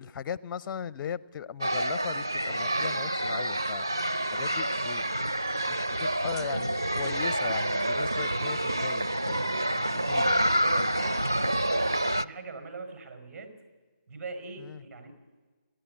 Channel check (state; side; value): inverted; both; correlation -0.84